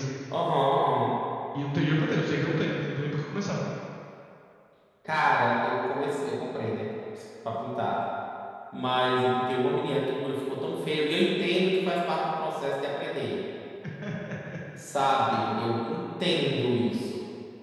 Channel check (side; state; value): both; identical; correlation 1.00